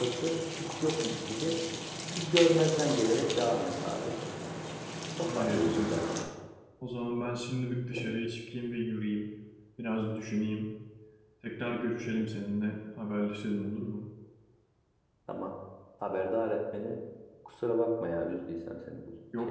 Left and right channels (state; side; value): identical; both; correlation 1.00